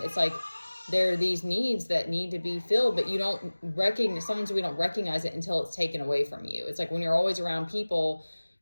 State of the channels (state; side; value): inverted; both; correlation -1.00